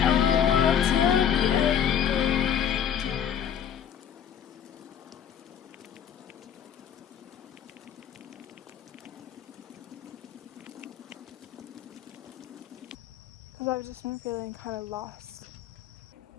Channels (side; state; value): right; quieter; 8.8 dB